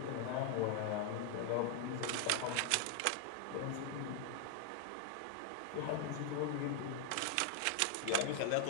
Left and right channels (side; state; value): both; different; correlation 0.00